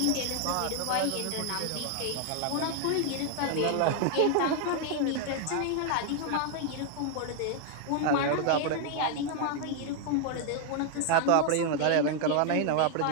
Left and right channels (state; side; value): different; both; correlation 0.00